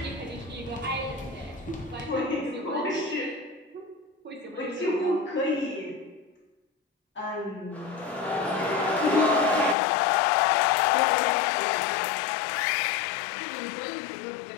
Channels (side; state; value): right; drops out; at 9.8 s